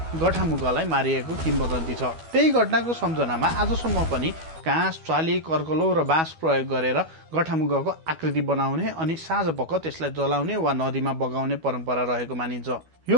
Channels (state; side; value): late; left; 12 ms